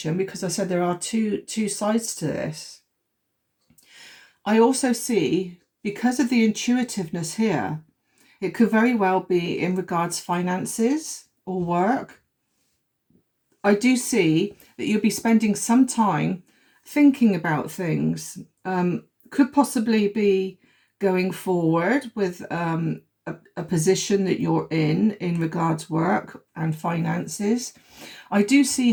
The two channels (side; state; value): both; identical; correlation 1.00